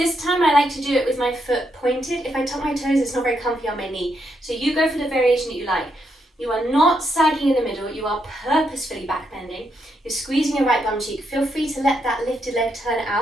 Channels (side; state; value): both; normal; correlation 0.79